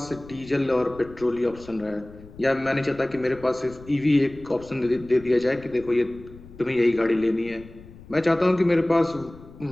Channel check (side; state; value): left; noise; rumble, 19 dB below the sound